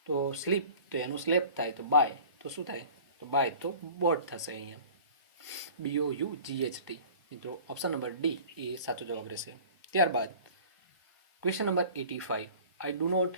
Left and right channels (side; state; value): both; inverted; correlation -0.44